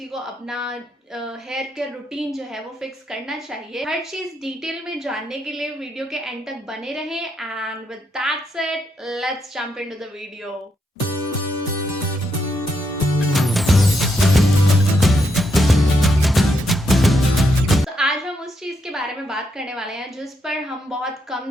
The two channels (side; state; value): both; normal; correlation 0.79